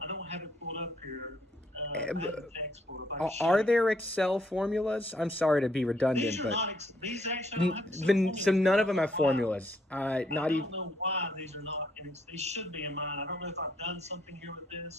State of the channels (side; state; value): both; normal; correlation 0.70